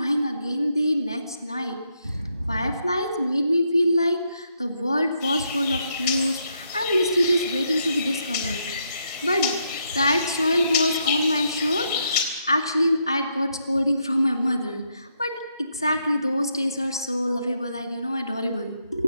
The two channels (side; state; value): both; inverted; correlation -0.77